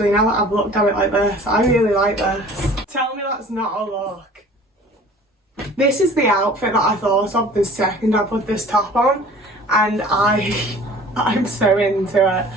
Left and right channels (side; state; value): both; normal; correlation 0.47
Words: now that I've looked at it like this. I really like this. Tell me that's not a look. This is the outfit that I thought of the second I put this top on, and I'm so into it.